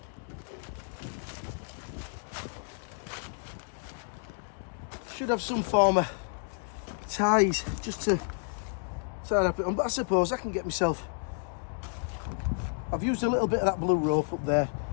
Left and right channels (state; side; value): silent; right; 57 dB below the other